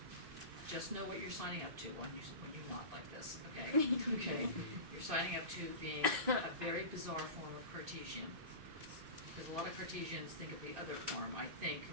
just know what you're signing up to when you're not like this, okay? Okay. You're signing up to being a very bizarre form of Cartesian. Because a lot of Cartesians think of the other form, I think,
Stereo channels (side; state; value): left; late; 2.6 ms